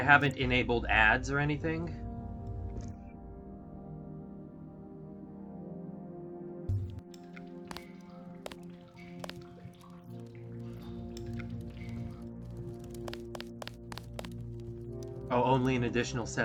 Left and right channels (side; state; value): both; identical; correlation 1.00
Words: haven't enabled ads or anything. Oh, only an additional